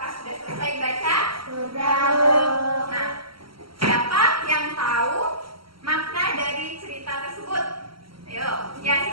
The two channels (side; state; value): left; late; 0.74 ms